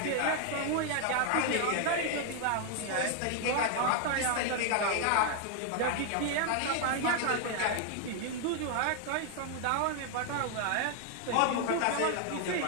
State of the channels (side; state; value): both; different; correlation 0.00